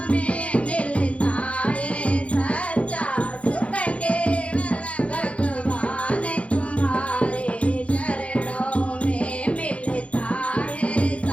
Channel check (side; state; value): right; late; 0.062 ms